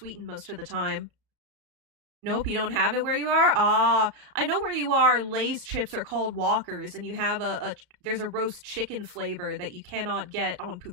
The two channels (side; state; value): left; late; 34 ms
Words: most of the time. Nope, you don't have it where you are? Ah, I know where you are. Lay's chips are called Walkers, and you have there's a roast chicken flavor that you cannot get on